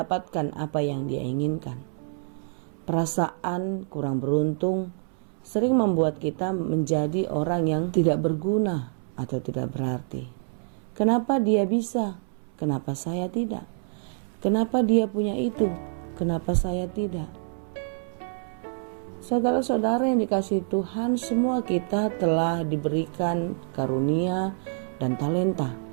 apa yang dia inginkan. Perasaan kurang beruntung sering membuat kita menjadi orang yang tidak berguna atau tidak berarti. Kenapa dia bisa? Kenapa saya tidak? Kenapa dia punya itu? Kenapa saya tidak? Saudara-saudara yang dikasihi Tuhan, semua kita telah diberikan karunia dan talenta.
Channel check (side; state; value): left; silent; 60 dB below the other